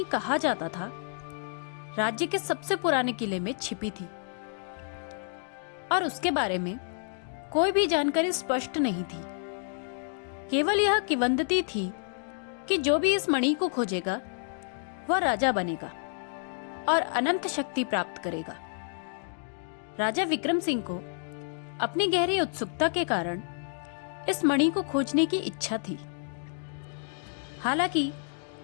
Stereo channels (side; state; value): right; silent; 58 dB below the other